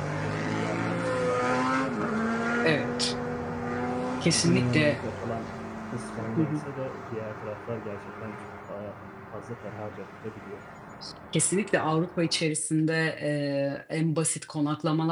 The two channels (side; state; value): both; identical; correlation 1.00